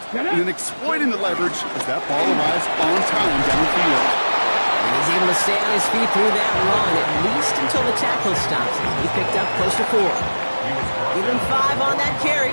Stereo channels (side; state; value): both; inverted; correlation -1.00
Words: and then exploiting the leverage as that ball arrives on time downfield. And he's able to stay on his feet through that run, at least until the tackle stops him. He picked up close to 4. Give him 5 on that